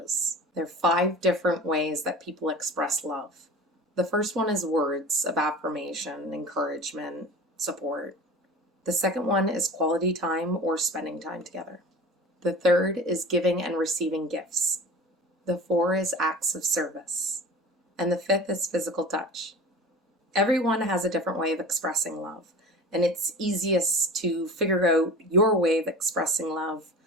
There are 5 different ways that people express love. The first one is words of affirmation, encouragement, support. The second one is quality time or spending time together. The third is giving and receiving gifts. The 4 is acts of service. And the 5th is physical touch. Everyone has a different way of expressing love, and it's easiest to figure out your way of expressing love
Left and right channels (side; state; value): both; normal; correlation 0.37